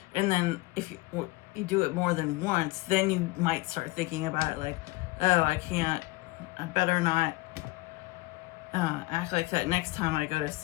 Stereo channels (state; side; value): quieter; right; 21.4 dB